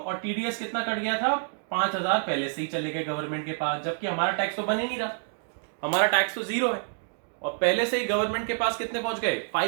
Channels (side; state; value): left; silent; digital silence